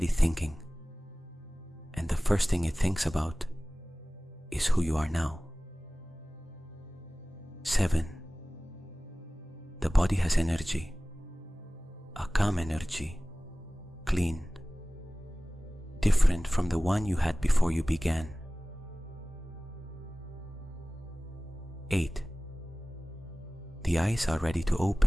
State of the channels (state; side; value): normal; both; correlation 0.98